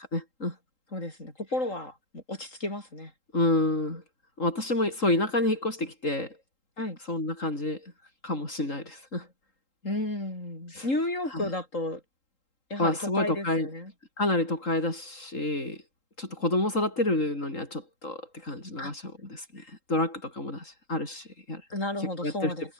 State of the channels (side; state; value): right; late; 3.8 ms